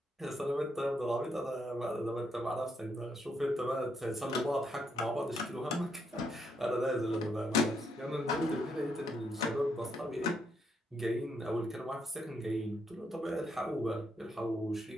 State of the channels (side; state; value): both; normal; correlation 0.77